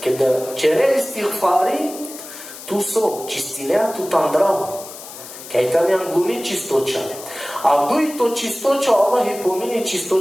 kad čere istighfari, tu so čistinea, tu tam drago. Kaj tam je anguni čistoća. A duj to čistoća, Allah je pomini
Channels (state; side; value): noise; left; hiss, 14 dB below the sound